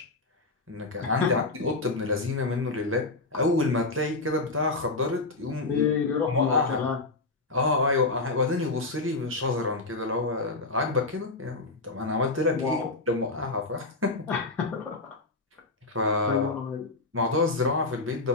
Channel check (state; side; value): quieter; right; 3.3 dB